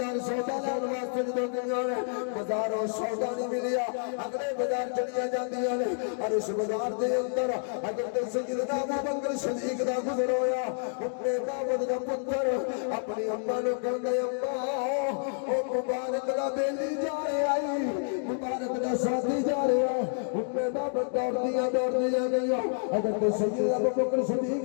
سودا لین واسطے جدوں گئیاں نے بازاروں سودا نہیں ملیا، اگلے بازار چلیاں جاندیاں نے. اور اس بازار دے اندر حضرت سیدنا ابو بکر صدیق دا گزر ہویا. اپنے بابا دا پتر اپنی اماں نوں کہندا اماں او مبارک دا بیلی جا رہا ہے، مبارک دا ساتھی جا رہا ہے. اپنے بابا دوڑدیاں گئیاں حضرت سیدنا ابو بکر صدیق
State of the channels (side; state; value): right; silent; digital silence